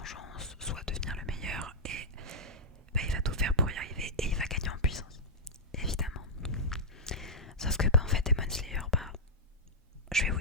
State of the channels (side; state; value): both; normal; correlation -0.08